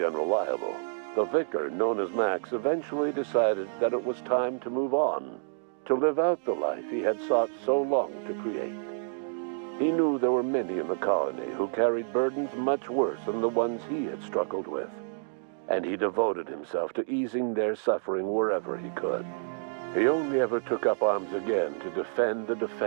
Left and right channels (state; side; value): silent; left; digital silence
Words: Unreliable, the vicar, known as Max, eventually decided that it was time to move on, to live out the life he had sought so long to create. He knew there were many in the colony who carried burdens much worse than the ones he had struggled with, and he devoted himself to easing their suffering wherever he could. He only ever took up arms again to defend the